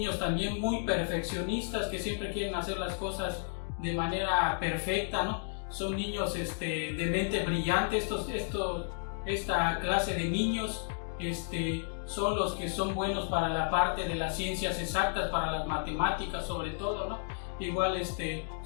también muy perfeccionistas que siempre quieren hacer las cosas de manera perfecta, ¿no? Son niños de mente brillante. Esta clase de niños son los que son buenos para la parte de las ciencias exactas, para las matemáticas sobre todo, ¿no? Igual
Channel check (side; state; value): right; silent; digital silence